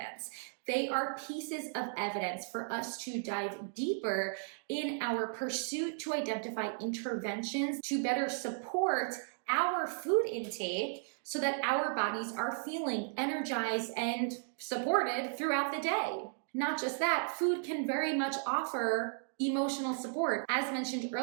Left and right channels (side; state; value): left; silent; digital silence